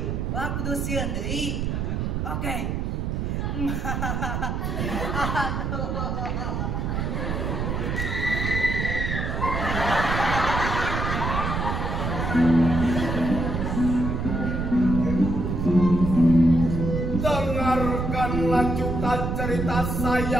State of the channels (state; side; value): noise; right; rumble, 1 dB below the sound